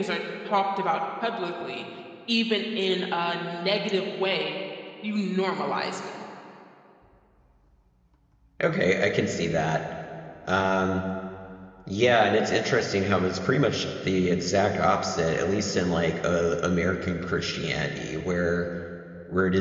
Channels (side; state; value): both; identical; correlation 1.00